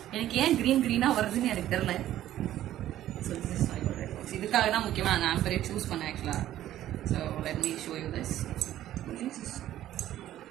எனக்கு ஏன் க்ரீனாக வருதுன்னு எனக்கு தெரியல. So this is my jewellery box. இதுக்காக தான் முக்கியமாக அந்த ஆம்பரே சூஸ் பண்ணேன் ஆக்சுவலாக. So let me show you this.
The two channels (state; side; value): quieter; left; 12.9 dB